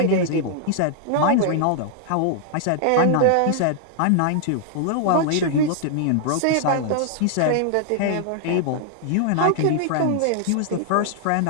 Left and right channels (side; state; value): both; different; correlation 0.00